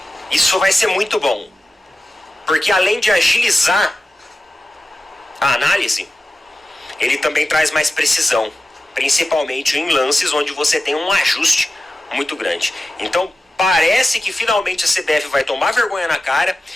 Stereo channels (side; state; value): both; normal; correlation 0.93